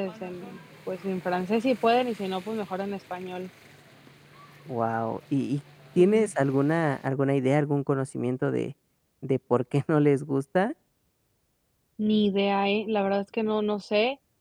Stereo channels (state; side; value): identical; both; correlation 1.00